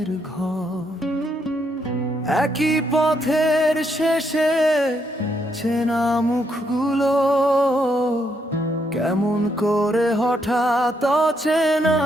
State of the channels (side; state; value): both; normal; correlation 0.76